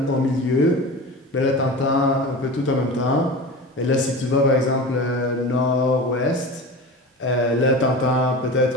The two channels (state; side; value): normal; both; correlation 0.31